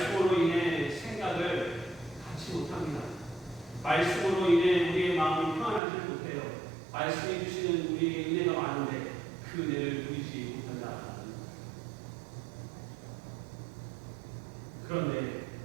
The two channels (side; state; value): left; drops out; at 5.8 s